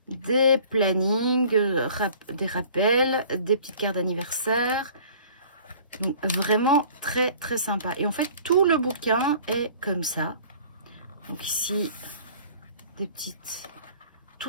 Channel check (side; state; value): both; inverted; correlation -0.50